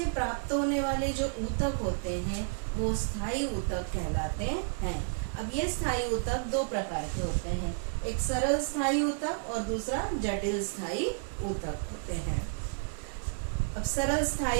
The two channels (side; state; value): left; silent; digital silence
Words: प्राप्त होने वाले जो ऊतक होते हैं वो स्थायी ऊतक कहलाते हैं। अब ये स्थायी ऊतक दो प्रकार के होते हैं, एक सरल स्थायी ऊतक और दूसरा जटिल स्थायी ऊतक होते हैं। अब सरल